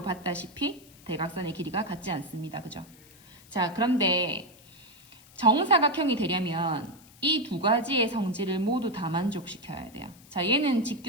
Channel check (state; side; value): noise; left; hiss, 24 dB below the sound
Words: 봤다시피 대각선의 길이가 같지 않습니다. 그죠? 자, 그런데 정사각형이 되려면 이 두 가지의 성질을 모두 다 만족시켜야 돼요. 자, 얘는